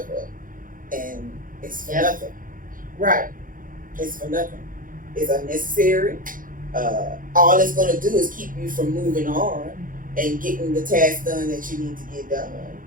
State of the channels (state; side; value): late; left; 0.40 ms